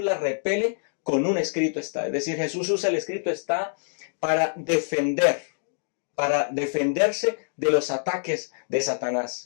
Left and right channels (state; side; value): silent; right; digital silence